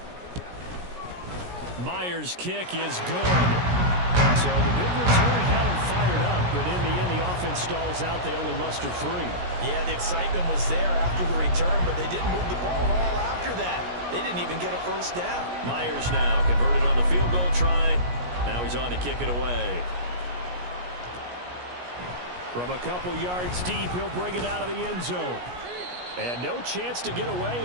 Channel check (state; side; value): late; left; 17 ms